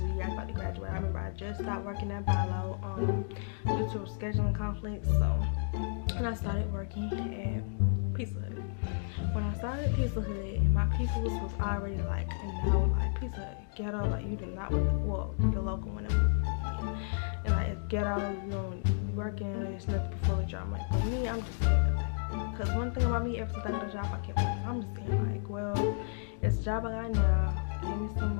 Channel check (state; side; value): silent; right; digital silence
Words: the year I was about to graduate. I remember I just stopped working at Bilo due to scheduling conflicts. So, and I started working at Pizza Hut. When I started at Pizza Hut, my people was already like, like Pizza Hut ghetto, like you do not want to, well, the local one, and like it's ghetto, you don't be working, there's nothing before the job. Like for me, I'm just saying, like, because one thing about me, ever since I got a job, I kept working. I'm just saying, like, well, it's a job I got now. Give me some